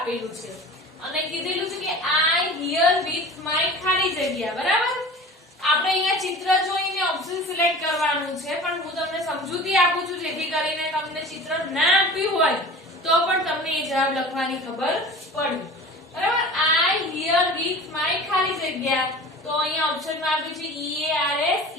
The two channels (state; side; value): normal; both; correlation 0.38